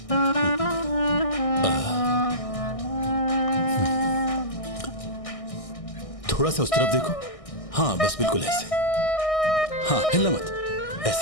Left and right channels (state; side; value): late; right; 1.6 ms